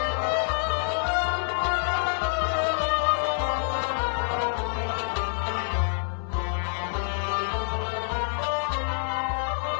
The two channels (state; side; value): silent; right; 60 dB below the other